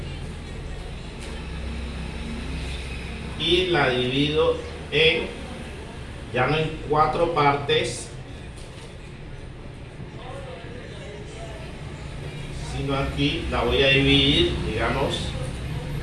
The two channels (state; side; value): identical; both; correlation 1.00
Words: y la divido ya no en 4 partes, sino aquí la voy a dividir, digamos,